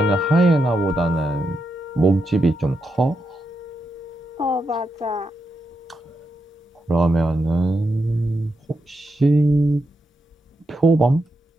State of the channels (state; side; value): normal; both; correlation 0.84